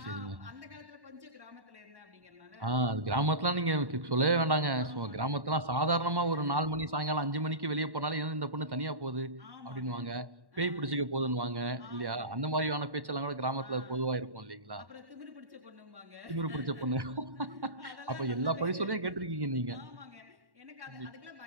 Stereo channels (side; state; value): left; late; 1.1 ms